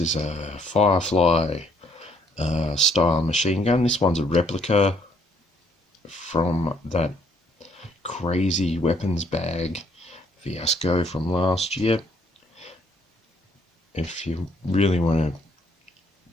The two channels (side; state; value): both; normal; correlation 0.67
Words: a Firefly style machine gun. This one's a replica from that crazy weapons bag fiasco from last year. If you really want to